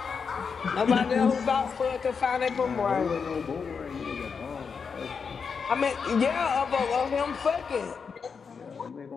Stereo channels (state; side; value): quieter; right; 5.8 dB